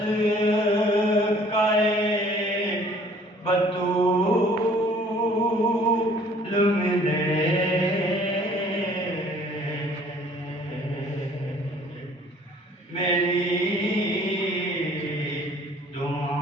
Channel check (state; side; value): normal; both; correlation 0.55